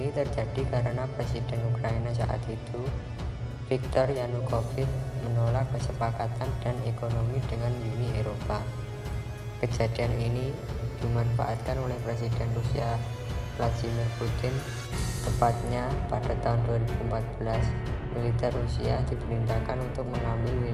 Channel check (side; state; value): both; identical; correlation 1.00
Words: terjadi karena Presiden Ukraina saat itu, Viktor Yanukovych, menolak kesepakatan dan ekonomi dengan Uni Eropa. Kejadian ini dimanfaatkan oleh Presiden Rusia Vladimir Putin. Tepatnya pada tahun 2014, militer Rusia diperintahkan untuk mengambil